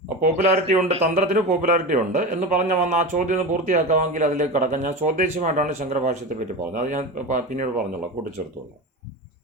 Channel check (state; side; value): normal; both; correlation 0.25